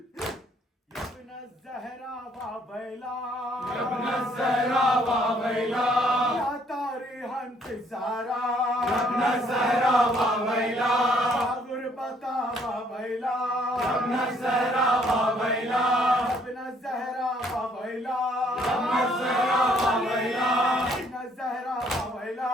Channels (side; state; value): both; normal; correlation 0.65